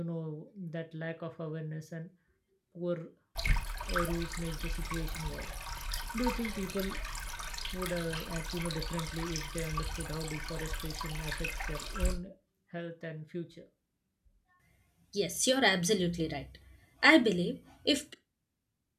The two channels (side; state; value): both; identical; correlation 1.00